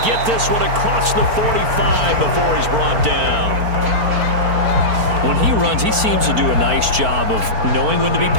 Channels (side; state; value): left; late; 4.5 ms